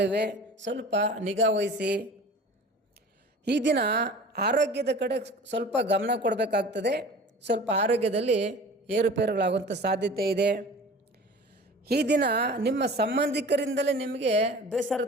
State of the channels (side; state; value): both; normal; correlation 0.41